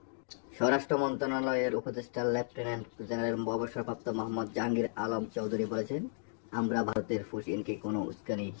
স্বরাষ্ট্র মন্ত্রণালয়ের উপদেষ্টা লেফটেন্যান্ট জেনারেল অবসরপ্রাপ্ত মোহাম্মদ জাহাঙ্গীর আলম চৌধুরী বলেছেন, আমরা ভারতের পুশ ইনকে কোনো উস্কানি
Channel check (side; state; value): right; silent; digital silence